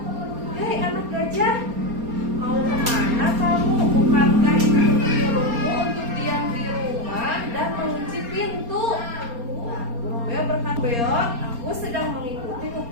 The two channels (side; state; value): left; late; 4.3 ms